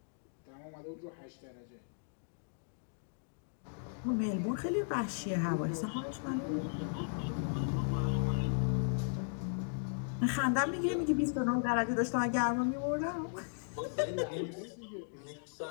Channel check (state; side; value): silent; right; digital silence